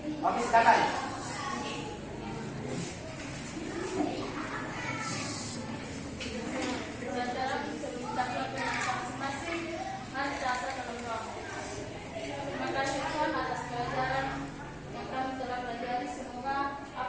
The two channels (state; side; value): identical; both; correlation 1.00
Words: Oke, silakan. Saudara bisa mengucapkan terima kasih masing-masing. Mari kita dalam doa. Terima kasih Tuhan atas pelajaran yang kami telah pelajari. Semoga